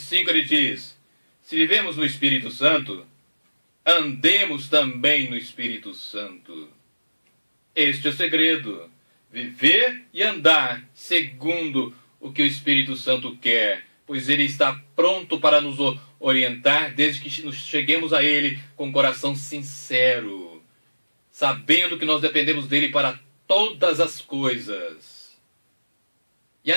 ele diz, se vivemos no Espírito Santo, andemos também no Espírito Santo. Este é o segredo. Viver e andar segundo o que o Espírito Santo quer. Pois ele está pronto para nos orientar desde que nos cheguemos a ele com o coração sincero. Sabendo que nós dependemos dele para todas as coisas. E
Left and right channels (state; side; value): inverted; both; correlation -1.00